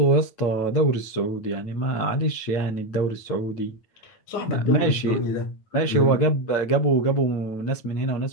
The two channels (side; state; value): right; late; 9.2 ms